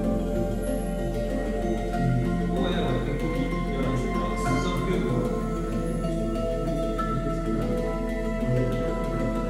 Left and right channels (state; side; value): identical; both; correlation 1.00